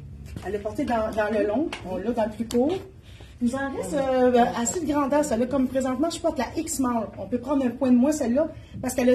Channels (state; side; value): identical; both; correlation 1.00